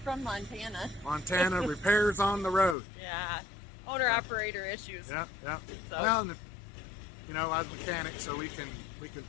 From Montana. Montana, repairs on the road. Yeah. Owner-operator issues. Yeah. So. Well, you know, I was a mechanic, so we can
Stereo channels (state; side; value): drops out; right; at 2.8 s